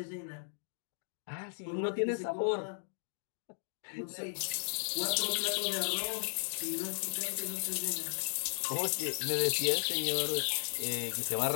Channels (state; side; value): silent; right; digital silence